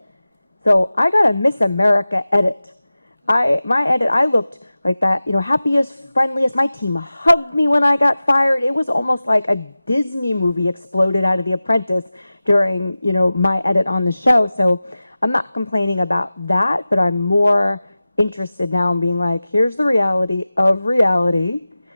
So I got a Miss America edit. My edit, I looked like that, happiest, friendliest. My team hugged me when I got fired. It was almost like a Disney movie exploded out of The Apprentice during, my edit on the show. So I'm not complaining about that, but I'm more interested now in being like, here's the reality of reality,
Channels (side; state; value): both; inverted; correlation -0.96